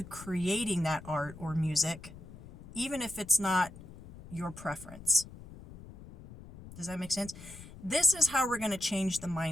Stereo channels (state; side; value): noise; left; rumble, 16 dB below the sound